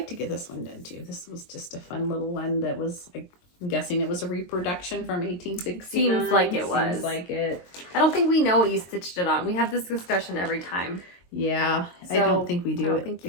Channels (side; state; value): right; late; 22 ms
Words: to get this one done too. This was just a fun little one that was, I'm guessing it was a reproduction from 1869. Seems like it was. Seems like it. I don't think we know what you stitched it on. We have this discussion every time. Yeah, So, I don't think we do. I don't think